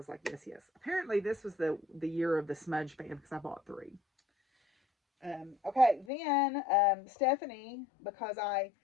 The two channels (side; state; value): right; drops out; at 6.1 s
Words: like, yes. Apparently this was the year of the smudge fan because I bought 3. Okay, then Stephanie, because I